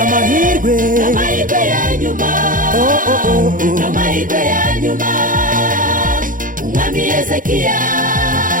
n'amahirwe ya nyuma n'amahirwe ya nyuma umwami Hezekiya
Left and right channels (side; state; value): left; late; 0.39 ms